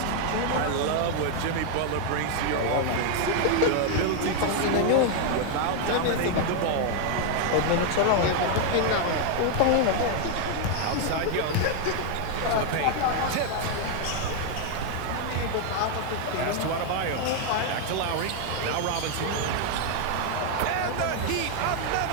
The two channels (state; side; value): different; both; correlation 0.00